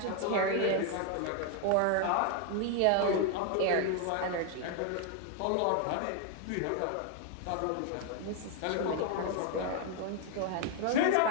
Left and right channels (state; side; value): different; both; correlation 0.01